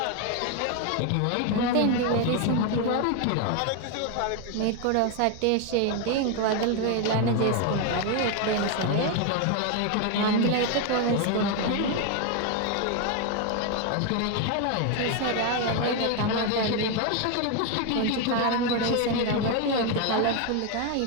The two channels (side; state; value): both; different; correlation 0.01